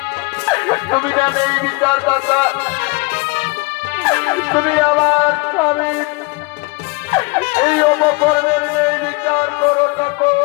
তুমি জানে এই বিচারদাতা, তুমি আমার স্বামী এই অপকর্মের নেই বিচার করো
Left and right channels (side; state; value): right; quieter; 26.3 dB